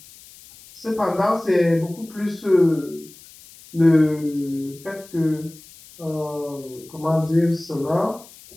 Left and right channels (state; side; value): noise; left; hiss, 22 dB below the sound